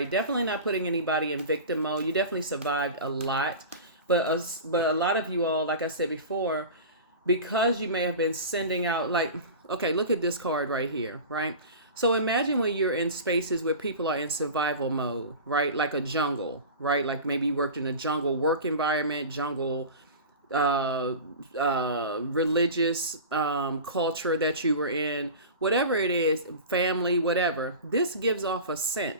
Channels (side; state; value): both; inverted; correlation -0.32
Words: Definitely not putting anybody in victim mode. You definitely survived a lot, but a lot of you all, like I said before, because you may have been sending out, like, okay, look at this card right here, right? So imagine when you're in spaces where people are in survival mode, right? Like a jungle, right? Like maybe you worked in a jungle work environment, jungle religious culture that you were in, whatever it is, family, whatever. This gives off a